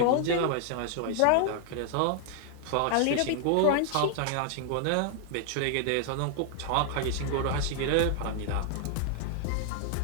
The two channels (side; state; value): both; different; correlation 0.00